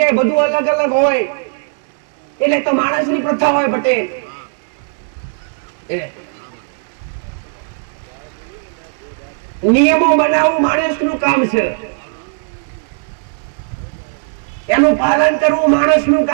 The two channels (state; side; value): silent; left; 64 dB below the other